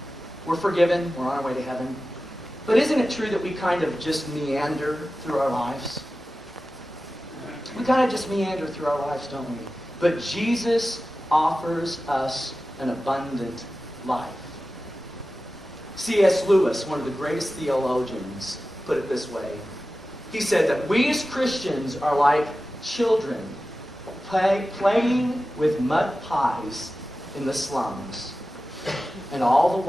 We're forgiven, we're on our way to heaven. But isn't it true that we kind of just meander through our lives? We kind of just meander through our lives, don't we? But Jesus offers us an abundant life. C.S. Lewis, one of the greatest theologians, put it this way. He said that we as Christians are like children playing with mud pies in the slums. And all the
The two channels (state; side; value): normal; both; correlation 0.95